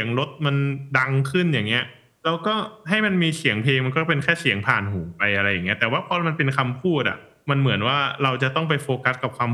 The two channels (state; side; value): identical; both; correlation 1.00